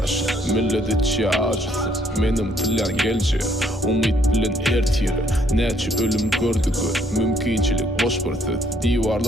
millet içi acısı. Menim tilyan gelce, umit bilen ertiri. Neçi ölüm gördü gör, mümkinçilik boş bir söz.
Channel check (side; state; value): both; normal; correlation 0.67